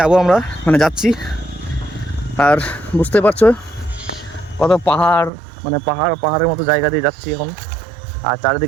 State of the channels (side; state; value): left; drops out; at 5.3 s